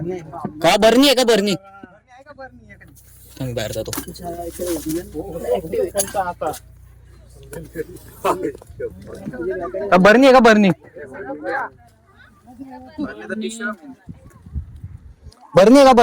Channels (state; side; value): identical; both; correlation 1.00